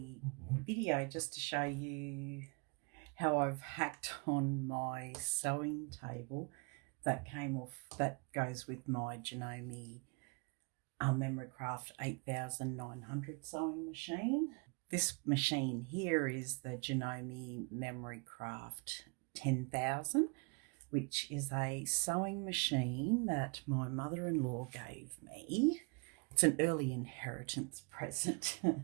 video just to show you how I've hacked on my sewing table that goes with my Janome Memorycraft 8900 sewing machine. This machine here is the Janome Memorycraft 10,000, which is a sewing machine that my mother-in-law gave me. It's an early inheritance present.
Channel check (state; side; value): quieter; left; 32.5 dB